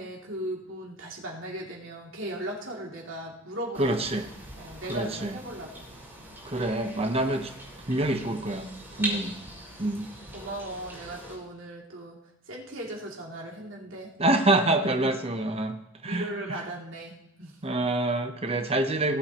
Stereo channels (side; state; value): both; normal; correlation 0.39